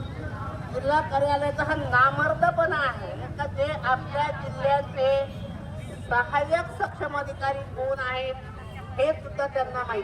जिल्हा कार्यालयाचा हा नामर्दपणा आहे का जे आपल्या जिल्ह्याचे सहाय्यक सक्षम अधिकारी कोण आहेत हे सुद्धा त्यांना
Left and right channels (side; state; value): both; identical; correlation 1.00